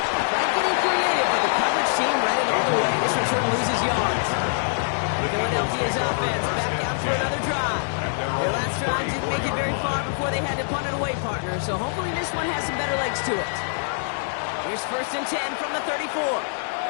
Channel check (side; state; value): right; silent; 62 dB below the other